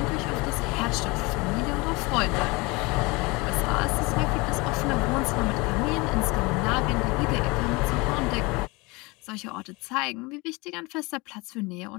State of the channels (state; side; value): quieter; right; 25.4 dB